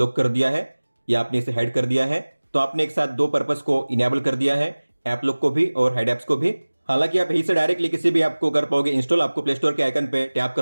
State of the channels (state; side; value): inverted; both; correlation -1.00